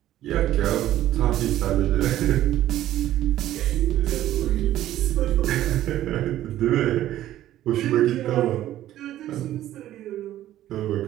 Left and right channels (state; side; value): quieter; left; 13.2 dB